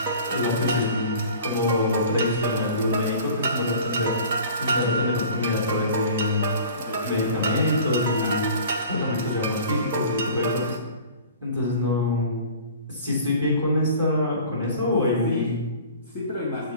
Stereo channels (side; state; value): both; inverted; correlation -0.43